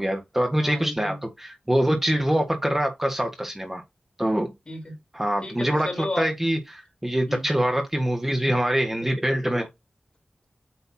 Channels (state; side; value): normal; both; correlation 0.97